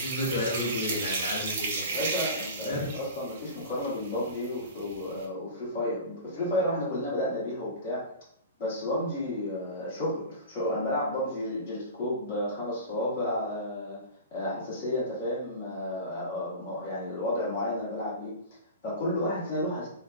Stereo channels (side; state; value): both; inverted; correlation -0.31